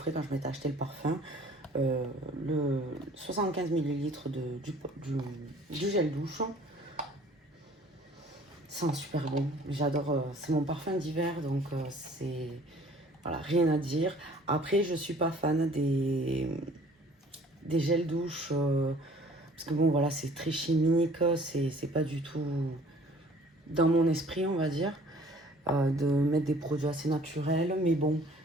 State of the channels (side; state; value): both; normal; correlation 0.53